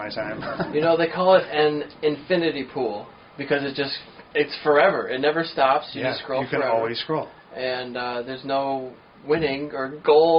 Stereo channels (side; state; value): both; identical; correlation 1.00